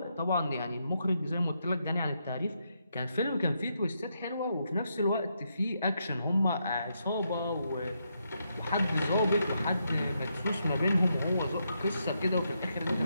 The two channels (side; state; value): both; inverted; correlation -0.80